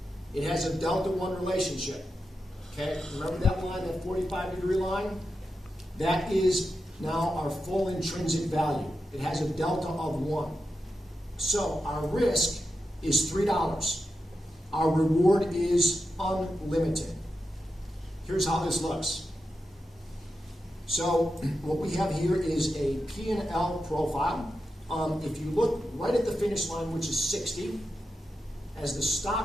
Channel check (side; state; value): both; normal; correlation 0.89